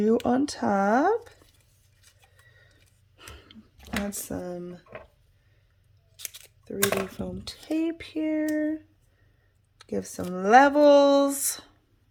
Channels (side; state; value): both; identical; correlation 1.00